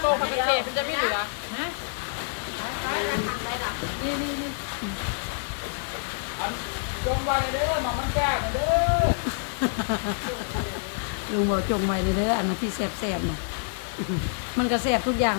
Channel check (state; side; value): silent; right; digital silence